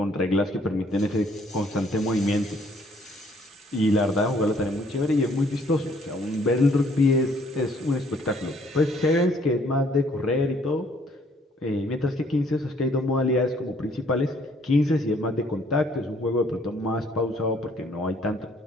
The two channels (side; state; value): both; normal; correlation 0.63